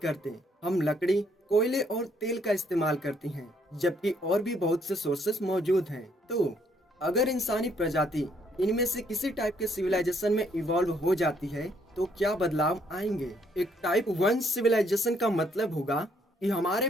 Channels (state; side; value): normal; both; correlation 0.69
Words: हम लकड़ी, कोयले और तेल का इस्तेमाल करते हैं, जबकि और भी बहुत से सोर्सेस मौजूद हैं। तो अगर इंसानी प्रजाति इनमें से किसी टाइप के सिविलाइजेशन में इवॉल्व हो जाती है तो क्या बदलाव आएंगे। एक टाइप 1 सिविलाइजेशन का मतलब होगा कि हमारे